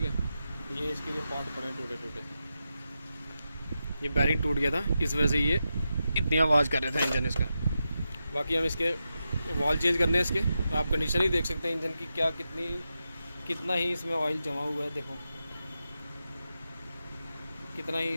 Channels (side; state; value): both; inverted; correlation -0.89